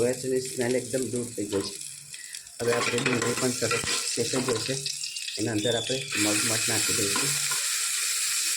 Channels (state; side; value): identical; both; correlation 1.00